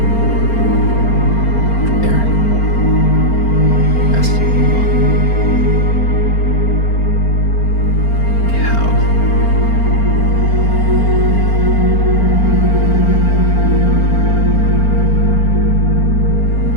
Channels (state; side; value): late; right; 4.4 ms